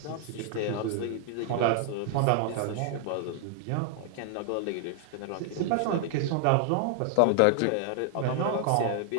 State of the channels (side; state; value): both; different; correlation 0.00